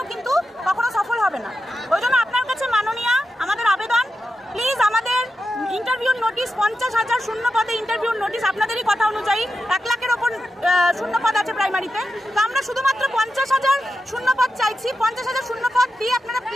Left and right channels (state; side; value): normal; both; correlation 0.90